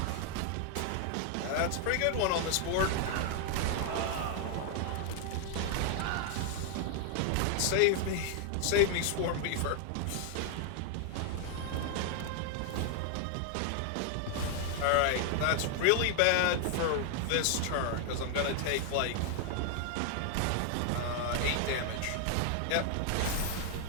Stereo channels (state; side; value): different; both; correlation 0.00